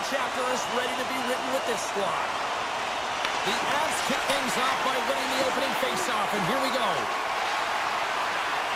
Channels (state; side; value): identical; both; correlation 1.00